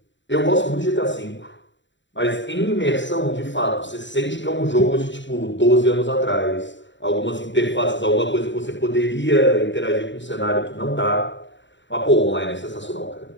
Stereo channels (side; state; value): right; late; 0.54 ms